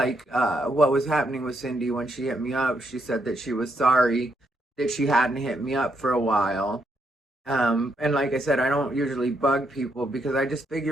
was happening with Cindy when she hit me up, she said that she was sorry that she hadn't hit me up for a while. And like I said, I don't usually bug people because I just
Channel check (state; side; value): normal; both; correlation 0.77